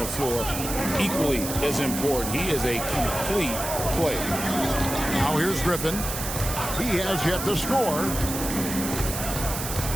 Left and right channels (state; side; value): noise; right; hiss, 6 dB below the sound